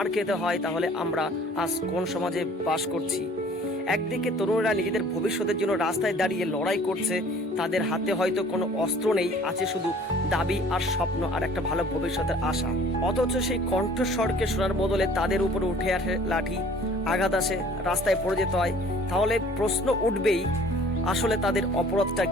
খেতে হয় তাহলে আমরা আজ কোন সমাজে বাস করছি? একদিকে তরুণরা নিজেদের ভবিষ্যতের জন্য রাস্তায় দাঁড়িয়ে লড়াই করছে, তাদের হাতে হয়তো কোনো অস্ত্র নেই, আছে শুধু দাবি আর স্বপ্ন আর একটা ভালো ভবিষ্যতের আশা। অথচ সেই কণ্ঠস্বরকে শোনার বদলে তাদের উপরে উঠে আসে লাঠি, আঘাত আসে, রাস্তায় পড়ে যেতে হয়। তাহলে প্রশ্ন উঠবেই, আসলে তাদের অপরাধটা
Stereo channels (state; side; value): normal; both; correlation 0.52